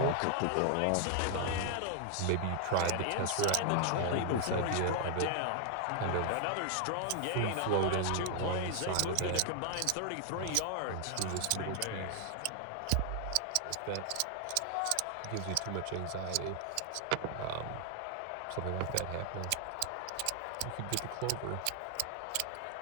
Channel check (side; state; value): both; different; correlation 0.00